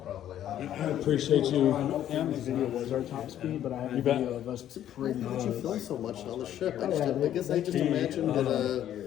probably. I appreciate you. And the video was our top speed, but I have a bet. video of us pretty Why did you film so much on the ship? I guess I just The, imagined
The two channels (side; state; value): right; quieter; 11.3 dB